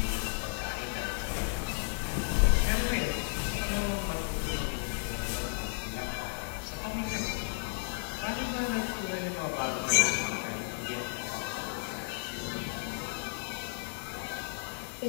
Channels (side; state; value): right; silent; digital silence